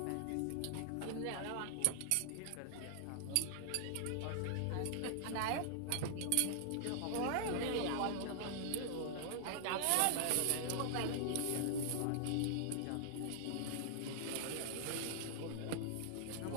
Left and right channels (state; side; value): different; both; correlation -0.01